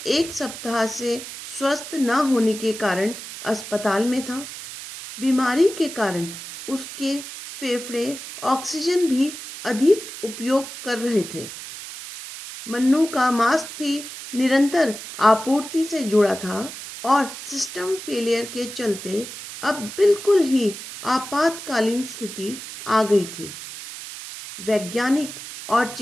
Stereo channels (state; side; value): noise; right; hiss, 11 dB below the sound